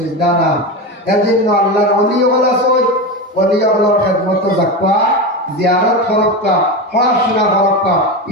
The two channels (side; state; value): both; normal; correlation 0.20